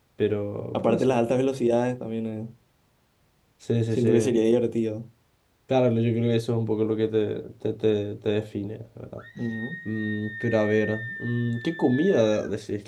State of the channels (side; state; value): both; identical; correlation 1.00